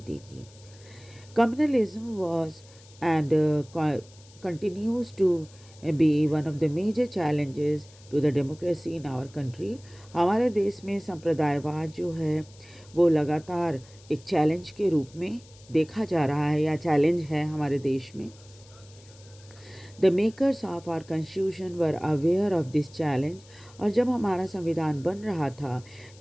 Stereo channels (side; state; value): left; noise; hiss, 25 dB below the sound